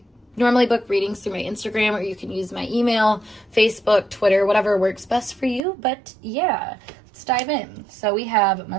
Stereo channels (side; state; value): left; drops out; at 5.7 s